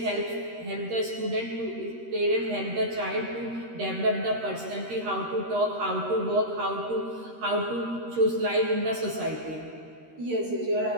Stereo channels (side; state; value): left; late; 13 ms